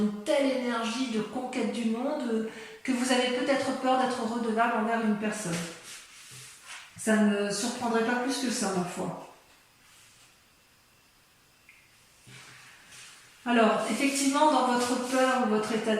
telle énergie de conquête du monde que vous avez peut-être peur d'être redevable envers une personne. Ça ne me surprendrait pas plus que ça, ma foi. Alors, effectivement, dans votre peur ou votre état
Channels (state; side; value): identical; both; correlation 1.00